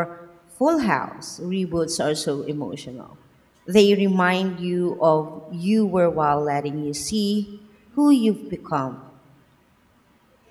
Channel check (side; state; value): both; identical; correlation 1.00